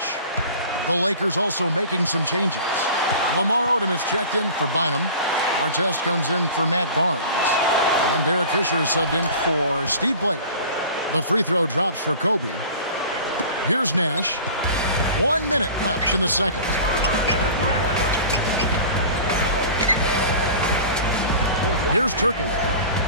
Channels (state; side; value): inverted; both; correlation -0.40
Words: The Lakers also making some changes. Lamar Odom is checked in for Bynum. Artest comes in for Matt Barnes. And Derek Fisher is subbed in for Steve Blake. The free throw drops for Kobe. Here's Nash. 1 minute left in the second. Here's